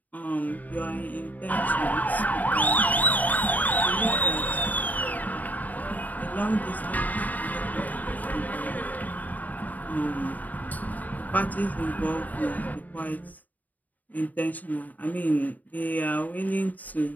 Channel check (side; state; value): right; late; 0.078 ms